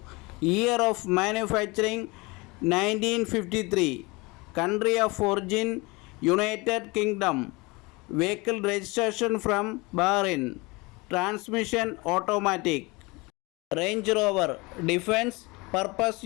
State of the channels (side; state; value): right; quieter; 25.0 dB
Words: year of manufacturing 1953, country of origin United Kingdom, vehicle registration from Bahrain, transmission automatic, Range Rover defence purpose